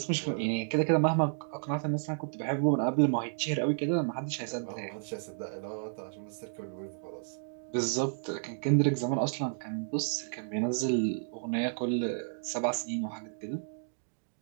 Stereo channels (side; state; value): left; silent; digital silence